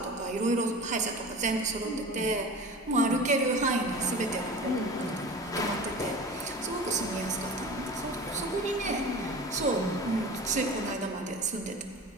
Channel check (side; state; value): both; normal; correlation 0.35